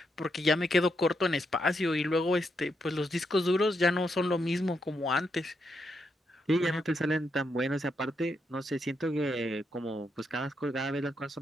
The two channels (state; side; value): normal; both; correlation 0.81